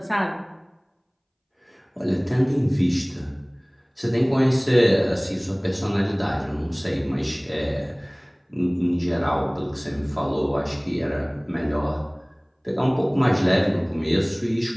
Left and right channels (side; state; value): both; identical; correlation 1.00